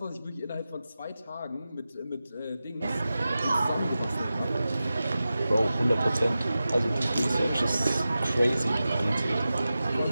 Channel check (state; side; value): inverted; both; correlation -0.94